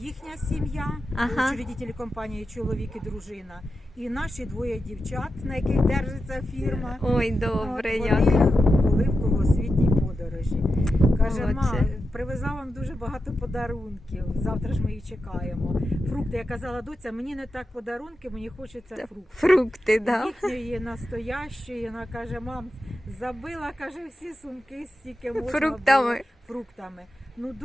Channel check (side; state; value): both; normal; correlation 0.90